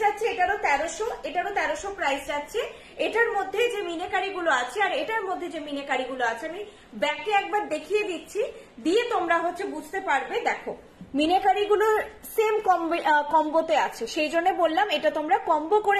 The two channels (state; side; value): identical; both; correlation 1.00